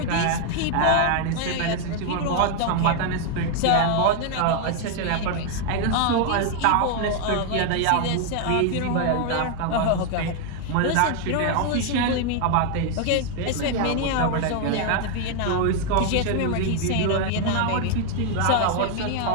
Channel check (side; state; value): both; different; correlation 0.00